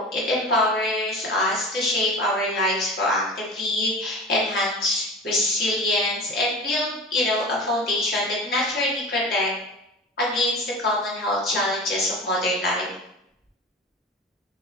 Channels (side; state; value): both; normal; correlation 0.34